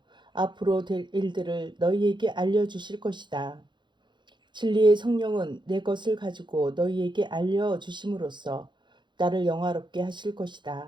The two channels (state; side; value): late; left; 0.22 ms